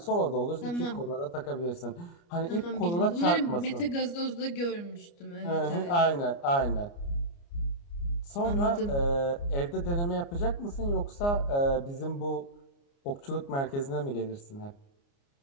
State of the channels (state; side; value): late; right; 29 ms